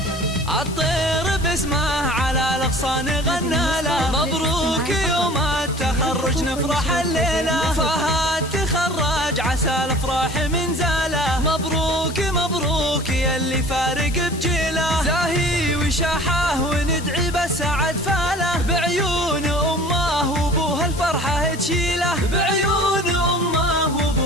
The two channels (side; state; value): left; noise; hiss, 15 dB below the sound